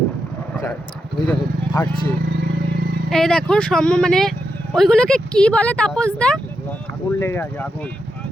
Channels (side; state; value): both; normal; correlation 0.85